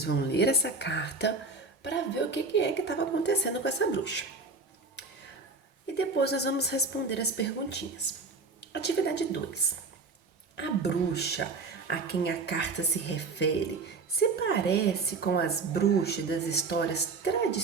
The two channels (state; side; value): quieter; left; 4.0 dB